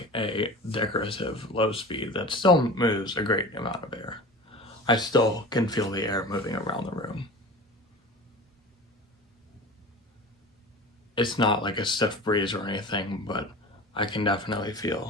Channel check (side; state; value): both; normal; correlation 0.35